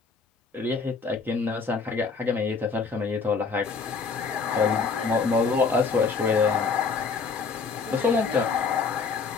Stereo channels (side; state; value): right; quieter; 5.0 dB